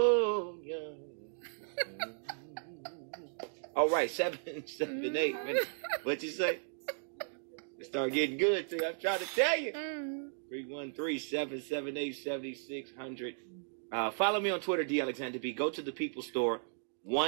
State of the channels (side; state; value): left; silent; digital silence